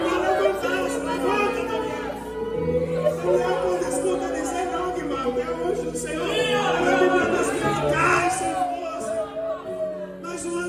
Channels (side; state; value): both; identical; correlation 1.00